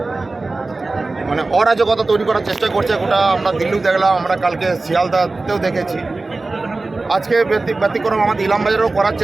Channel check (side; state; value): left; quieter; 3.4 dB